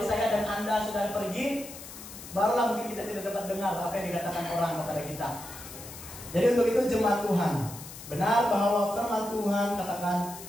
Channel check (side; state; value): left; noise; hiss, 14 dB below the sound